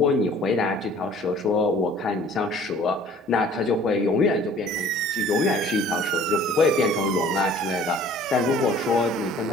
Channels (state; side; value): normal; both; correlation 0.51